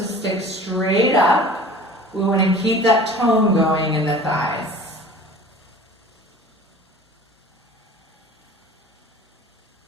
stick straight up. We want to keep that tone going in the thighs.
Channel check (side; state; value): both; normal; correlation 0.43